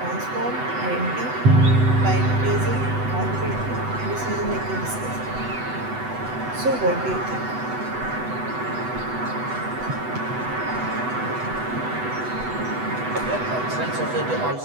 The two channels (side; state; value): left; late; 8.0 ms